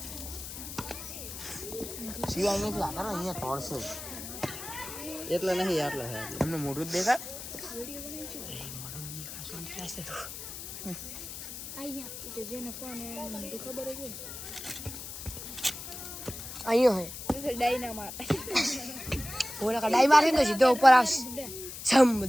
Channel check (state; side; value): noise; left; hiss, 9 dB below the sound